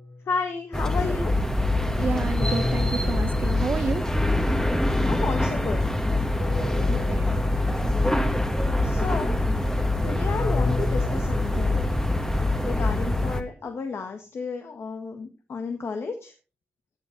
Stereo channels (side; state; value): both; normal; correlation 0.90